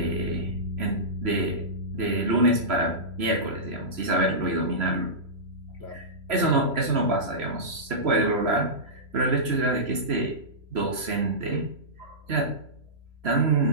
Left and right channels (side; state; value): left; late; 3.0 ms